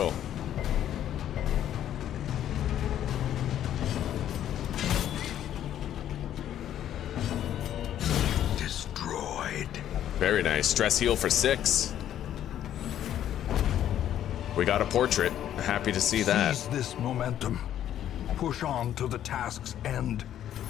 Destroyed. Very nice. Stress heal for 6. We got a portrait. Happy to see that. Seize this momentum. Push on to the task's end.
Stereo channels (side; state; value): right; quieter; 11.1 dB